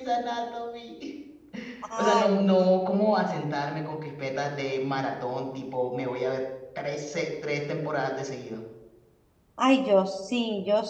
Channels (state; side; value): identical; both; correlation 1.00